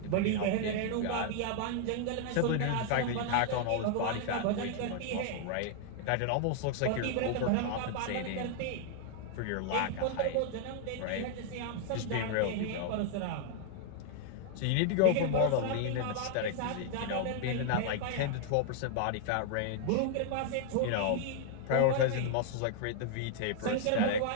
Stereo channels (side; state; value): both; different; correlation 0.00